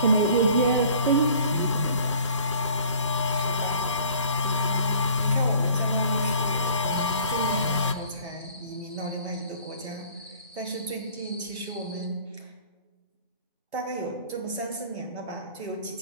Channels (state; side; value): inverted; both; correlation -0.51